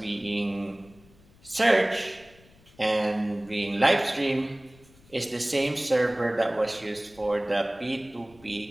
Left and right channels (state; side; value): noise; left; rumble, 27 dB below the sound